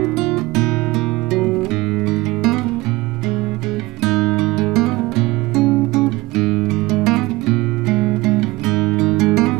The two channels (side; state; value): left; quieter; 20.8 dB